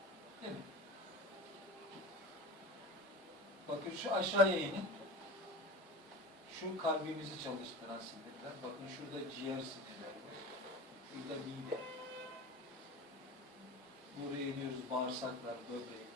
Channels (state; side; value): normal; both; correlation 0.32